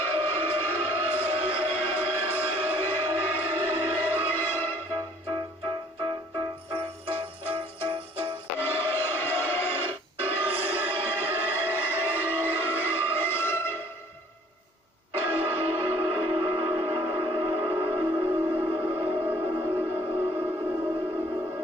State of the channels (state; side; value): normal; both; correlation 0.56